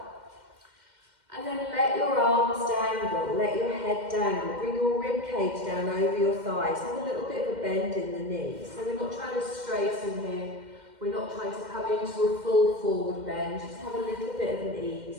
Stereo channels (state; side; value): late; left; 2.1 ms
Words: And then let your arms dangle, let your head dangle. Bring your rib cage down over your thighs. Have a little bit of a bend in the knee. So we're not trying to straighten here. We're not trying to come into a full forward bend, just have a little bit of an ease.